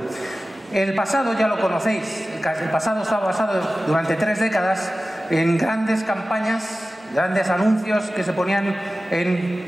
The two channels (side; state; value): both; normal; correlation 0.96